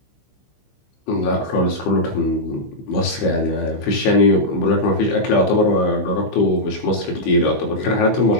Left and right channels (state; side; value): late; right; 15 ms